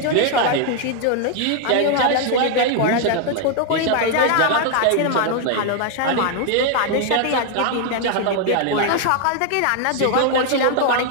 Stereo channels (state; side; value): different; both; correlation 0.00